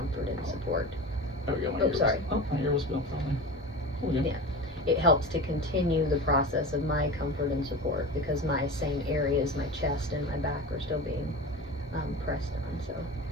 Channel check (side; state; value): both; normal; correlation 0.30